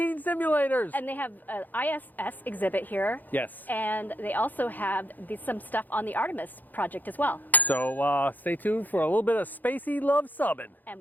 simulators. And they have an ISS exhibit here. Yes. And they also have some stuff on the Artemis project as well. So stay tuned for a little bit of spacey Luv Subbin. And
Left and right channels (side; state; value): right; late; 0.084 ms